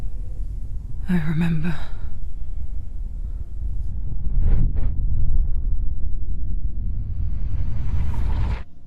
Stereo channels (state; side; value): identical; both; correlation 1.00